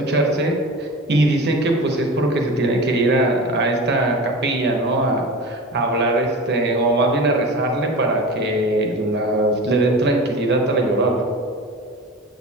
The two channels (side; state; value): both; normal; correlation 0.32